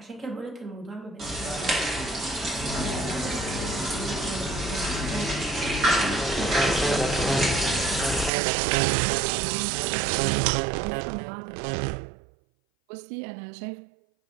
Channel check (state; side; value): drops out; left; at 8.3 s